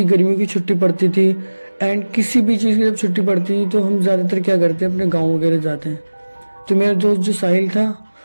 गर्मियों की छुट्टी पड़ती थी एंड किसी भी चीज़ की जब छुट्टी पड़ती थी तो हम ज़्यादातर क्या करते हैं, अपने गाँव वगैरह जाते हैं। तो मेरा दोस्त जो साहिल था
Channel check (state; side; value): inverted; both; correlation -1.00